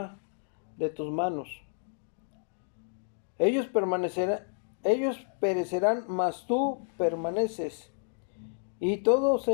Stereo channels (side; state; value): right; silent; digital silence